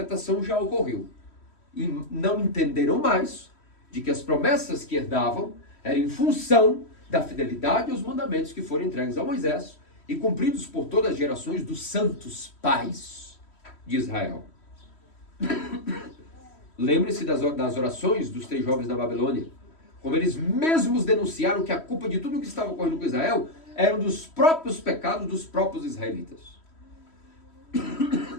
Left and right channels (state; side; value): late; right; 3.1 ms